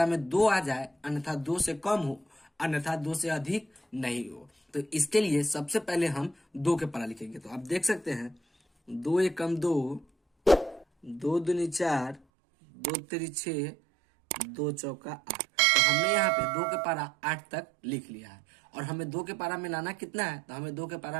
में 2 आ जाए, अन्यथा 2 से कम हो, अन्यथा 2 से अधिक नहीं हो। तो इसके लिए सबसे पहले हम 2 के पारा लिखेंगे। तो आप देख सकते हैं 2 एकम 2, 2 दूनी 4, 2 तिरी 6, 2 चौका 8। तो हमने यहाँ पे 2 के पारा 8 तक लिख लिया है और हमें 2 के पारा में लाना कितना है? तो हमें 2 के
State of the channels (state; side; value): drops out; left; at 12.2 s